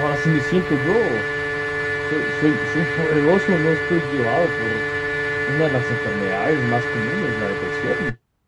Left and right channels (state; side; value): identical; both; correlation 1.00